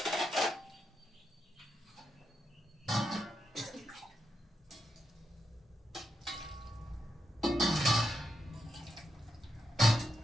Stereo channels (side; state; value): both; normal; correlation 0.84